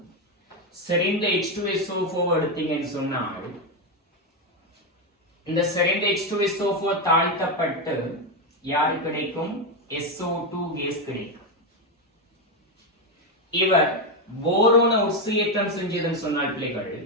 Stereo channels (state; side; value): normal; both; correlation 0.08